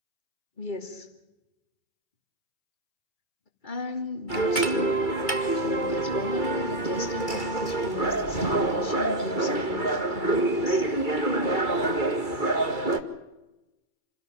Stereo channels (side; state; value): right; late; 2.3 ms